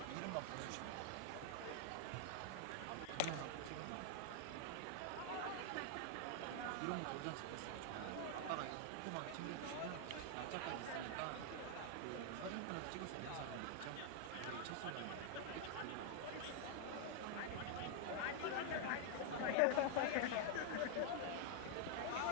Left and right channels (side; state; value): both; different; correlation 0.00